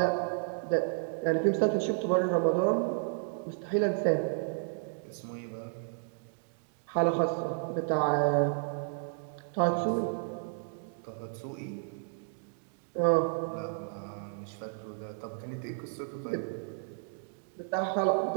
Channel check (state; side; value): silent; left; digital silence